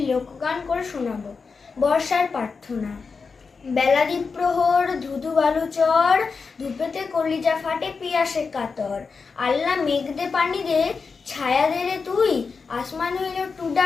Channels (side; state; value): right; quieter; 4.9 dB